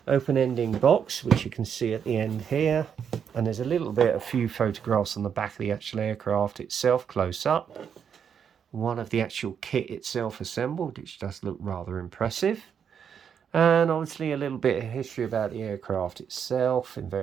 open ending box, which you can see at the end here. And there's a few photographs on the back of the actual aircraft itself, close up. One of the actual kit itself assembled, which does look rather impressive. And obviously a little bit of history about the aircraft itself in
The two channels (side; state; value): left; quieter; 7.6 dB